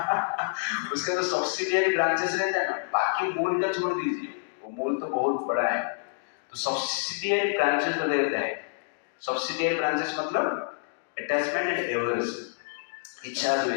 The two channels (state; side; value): silent; right; digital silence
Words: उसका तो सब्सिडियरी ब्रांचेस रहता है ना, बाकी मूल का छोड़ दीजिए, वो मूल तो बहुत बड़ा है। तो सब्सिडियरी ब्रांचेस तो रहता है। सब्सिडियरी ब्रांचेस मतलब अटैचमेंट एंड एवर्सन, इच्छा